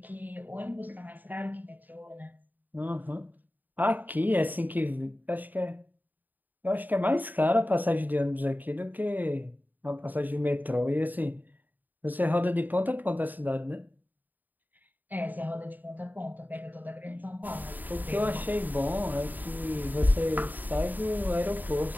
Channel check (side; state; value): left; late; 0.086 ms